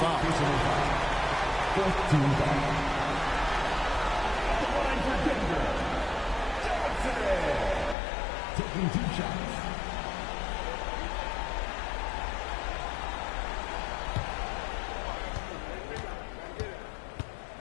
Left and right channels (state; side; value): drops out; right; at 8.0 s